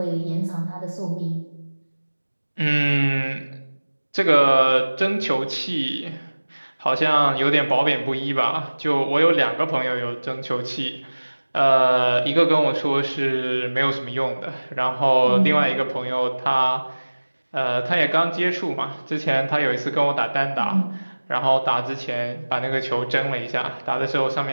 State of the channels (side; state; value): both; inverted; correlation -1.00